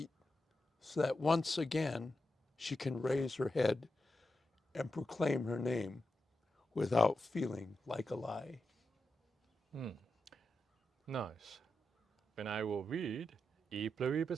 so that once again she can raise her head and proclaim her name without feeling like a lie. Nice. Then I will read E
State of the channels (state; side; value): normal; both; correlation 0.88